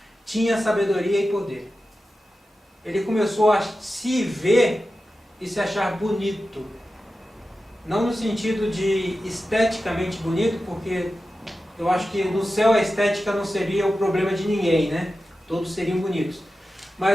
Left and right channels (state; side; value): normal; both; correlation 0.92